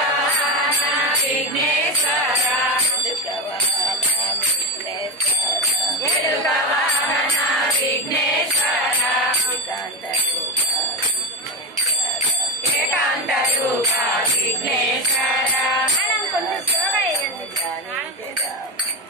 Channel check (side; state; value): both; normal; correlation 0.17